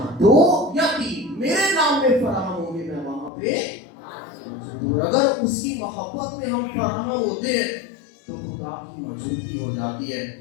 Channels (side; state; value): right; drops out; at 3.3 s